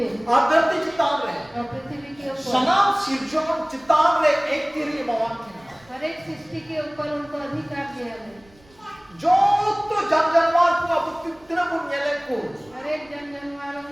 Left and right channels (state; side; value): noise; right; rumble, 29 dB below the sound